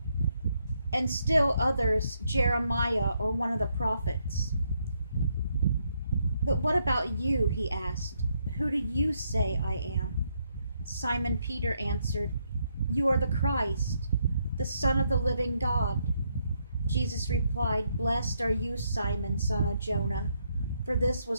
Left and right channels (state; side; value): inverted; both; correlation -0.76